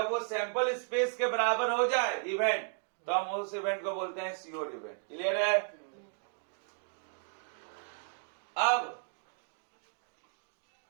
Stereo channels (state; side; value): silent; left; 55 dB below the other